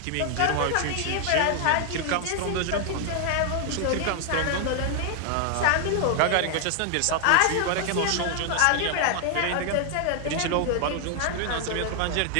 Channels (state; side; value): different; both; correlation 0.00